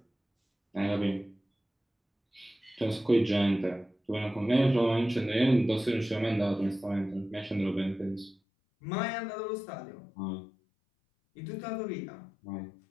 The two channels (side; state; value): right; drops out; at 8.3 s